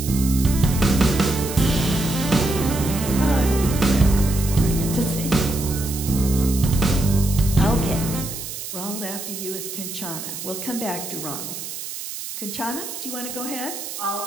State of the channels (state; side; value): noise; right; hiss, 8 dB below the sound